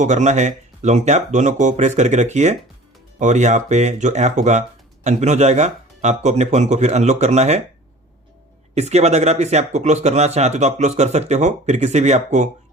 करना है लॉन्ग टैप, दोनों को प्रेस करके रखिए और यहाँ पे जो ऐप होगा अनपिन हो जाएगा। आपको अपने फ़ोन को फिर अनलॉक करना है। इसके बाद अगर आप इस ऐप को क्लोज करना चाहते हो तो आप क्लोज कर सकते हो, फिर किसी भी ऐप को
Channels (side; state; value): both; normal; correlation 0.44